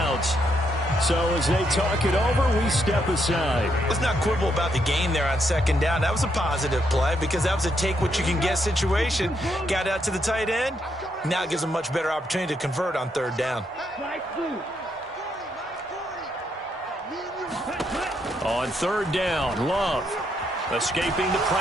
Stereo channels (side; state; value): both; normal; correlation 0.77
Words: So as they talk it over, we step aside. Let's not quibble about the gain there on 2nd down. That was a positive play because that was a take-what-you-can-get situation. Got out to the tight end. Now it gives them a much better opportunity to convert on 3rd down. On 3rd down, Love escaping the